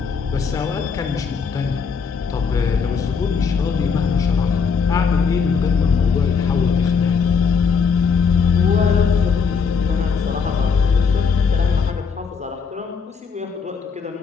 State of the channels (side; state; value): right; quieter; 5.7 dB